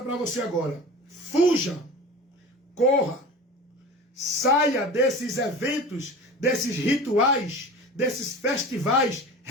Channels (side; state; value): both; normal; correlation 0.35